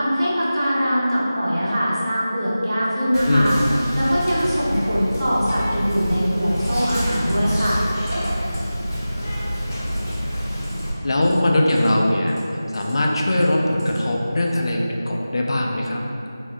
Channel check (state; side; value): inverted; both; correlation -0.95